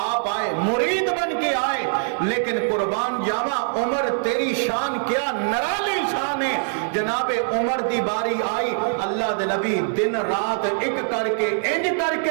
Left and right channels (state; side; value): silent; left; digital silence